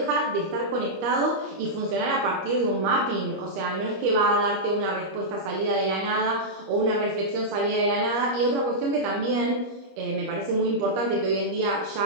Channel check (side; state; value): left; late; 25 ms